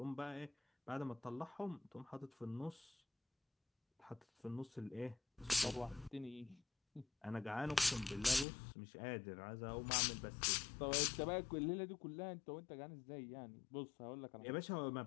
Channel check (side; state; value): right; drops out; at 8.5 s